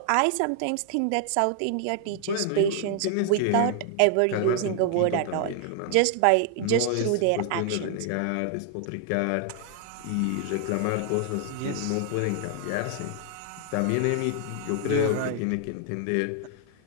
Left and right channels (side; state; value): both; different; correlation 0.00